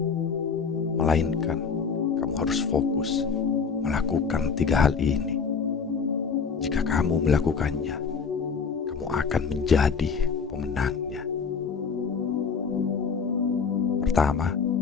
melainkan kamu harus fokus melakukan 3 hal ini. Jika kamu melakukannya, kamu akan menjadi pemenangnya. Pertama,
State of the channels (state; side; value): quieter; right; 5.7 dB